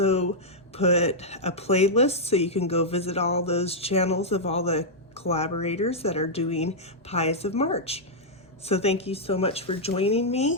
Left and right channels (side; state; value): both; normal; correlation -0.07